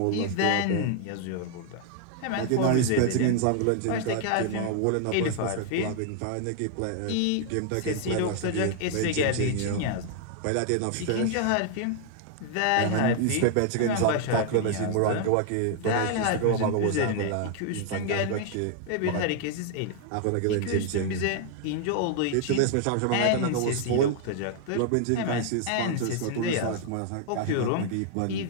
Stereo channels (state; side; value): different; both; correlation 0.00